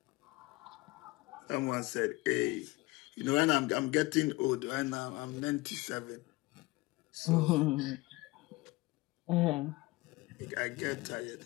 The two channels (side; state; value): right; quieter; 21.6 dB